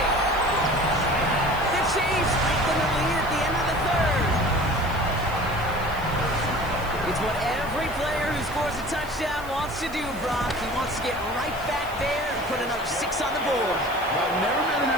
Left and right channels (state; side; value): noise; right; hiss, 19 dB below the sound